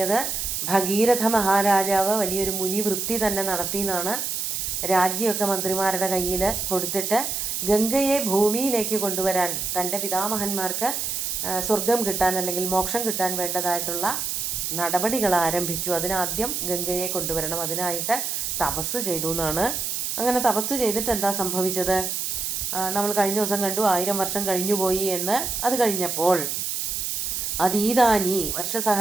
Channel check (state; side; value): noise; right; hiss, 2 dB below the sound